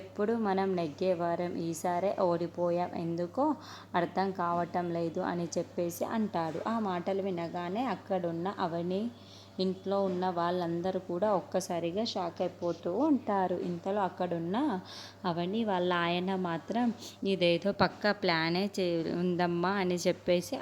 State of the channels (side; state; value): both; identical; correlation 1.00